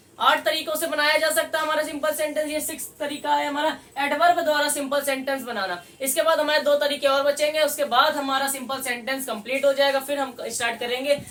8 तरीकों से बनाया जा सकता है हमारा सिंपल सेंटेंस, ये 6 तरीका है हमारा एडवर्ब द्वारा सिंपल सेंटेंस बनाना। इसके बाद हमारे 2 तरीके और बचेंगे, उसके बाद हमारा सिंपल सेंटेंस कंप्लीट हो जाएगा। फिर हम स्टार्ट करेंगे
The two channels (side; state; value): both; identical; correlation 1.00